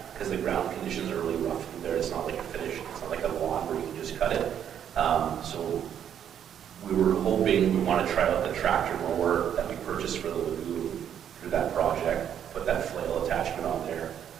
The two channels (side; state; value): left; quieter; 9.3 dB